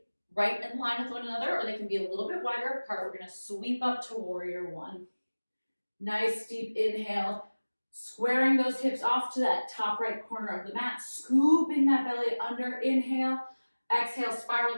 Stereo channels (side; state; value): both; inverted; correlation -1.00